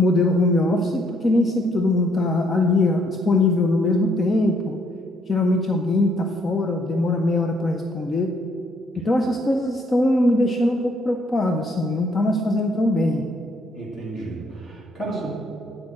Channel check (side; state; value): both; normal; correlation 0.68